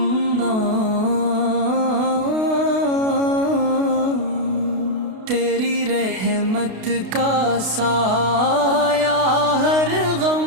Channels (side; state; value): left; late; 32 ms